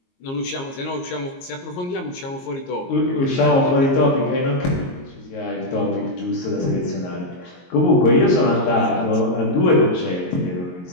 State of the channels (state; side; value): late; right; 22 ms